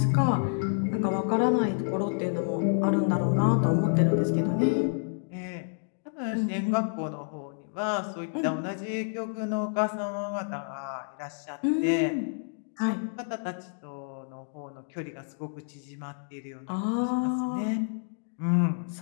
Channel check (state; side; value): silent; right; digital silence